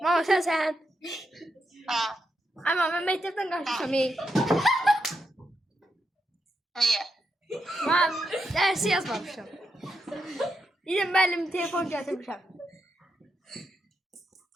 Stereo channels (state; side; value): normal; both; correlation 0.84